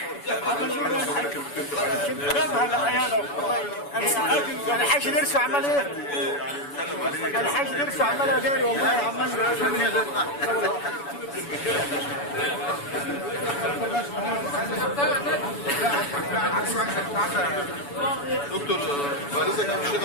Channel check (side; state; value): right; late; 7.0 ms